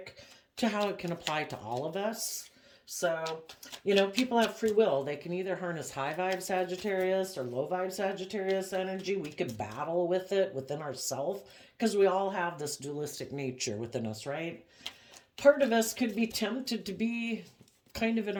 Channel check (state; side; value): identical; both; correlation 1.00